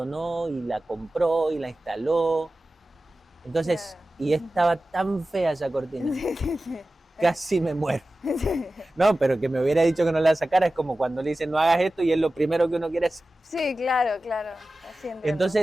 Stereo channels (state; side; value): normal; both; correlation 0.95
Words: y la compró y la instaló. Entonces, y estaba tan fea esa cortina, casi me muero. No, pero que me hubiera dicho que no la sacara es como cuando le dicen no hagas esto y es lo primero que uno quiere hacer. Sí, claro.